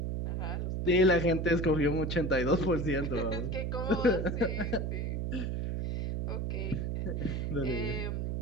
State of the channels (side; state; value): right; noise; hum, 1 dB below the sound